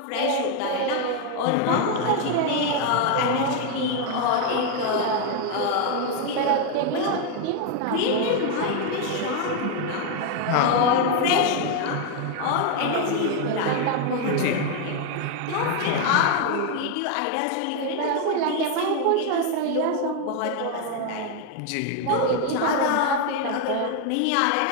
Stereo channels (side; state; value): both; different; correlation 0.01